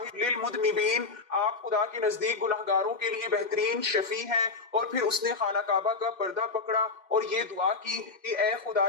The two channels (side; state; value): right; quieter; 4.0 dB